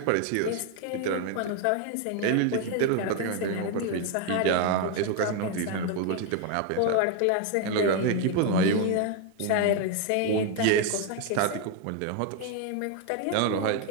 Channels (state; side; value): different; both; correlation 0.01